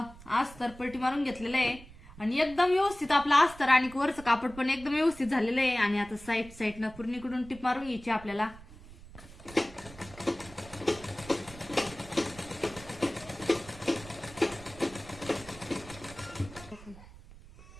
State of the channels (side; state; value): right; noise; rumble, 18 dB below the sound